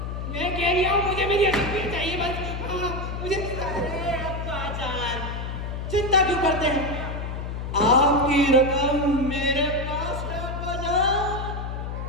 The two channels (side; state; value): left; noise; hum, 5 dB below the sound